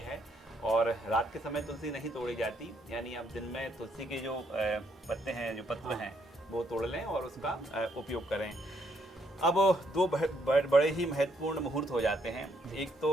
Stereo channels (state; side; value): normal; both; correlation 0.73